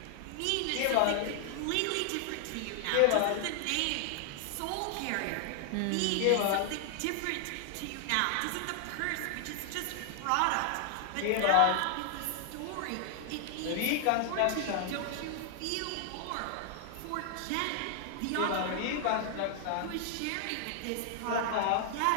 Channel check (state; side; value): different; both; correlation 0.00